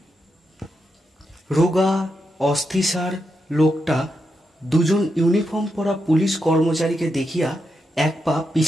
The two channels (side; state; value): both; normal; correlation 0.85